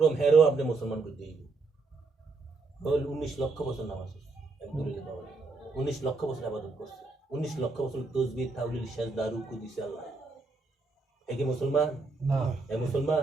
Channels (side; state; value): left; quieter; 3.8 dB